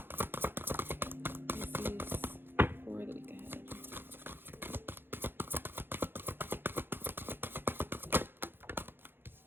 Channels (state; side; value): late; left; 0.10 ms